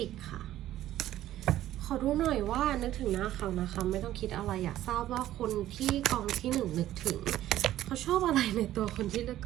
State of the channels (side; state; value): left; quieter; 13.5 dB